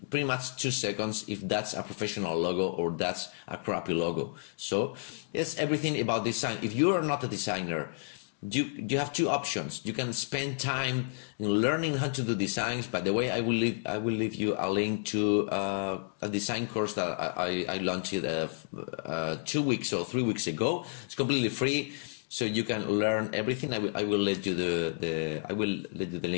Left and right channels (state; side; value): silent; right; digital silence